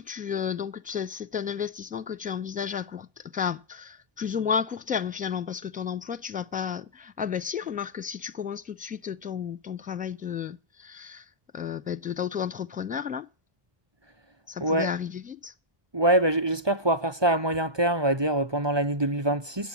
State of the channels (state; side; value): late; left; 1.2 ms